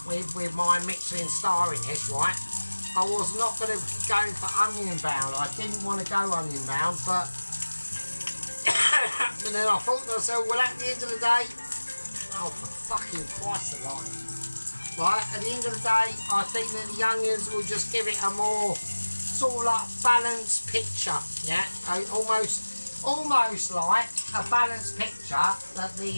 with my Michelin star in it, right? I was not going to go for onion bound. I didn't want to go onion bound, but but then I thought to myself, well, at the end of the day, oh for fucking Christ alive. Right, at the end of the day, I think that the onions will just give it a more sort of like balanced picture, yeah, almost like a balanced picture that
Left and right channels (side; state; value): both; inverted; correlation -1.00